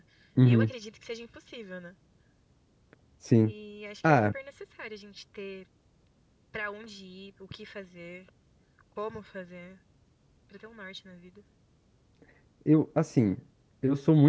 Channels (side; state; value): both; identical; correlation 1.00